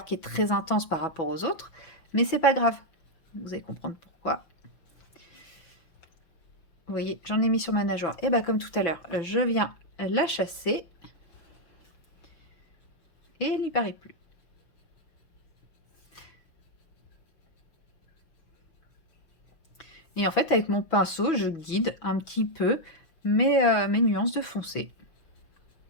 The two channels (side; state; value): right; late; 6.1 ms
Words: qui est très intense par rapport aux autres. Mais c'est pas grave. Vous allez comprendre pourquoi. Vous voyez, j'en ai mis sur ma nageoire. Et bien, comme tout à l'heure, je viens la chasser. Et elle n'y paraît plus. Et en fait, avec mon pinceau, je guide un petit peu mes nuances de foncé.